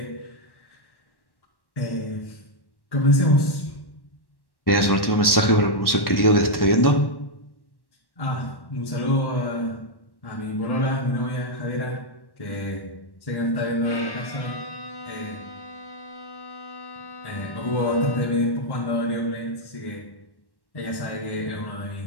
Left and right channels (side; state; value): right; late; 1.1 ms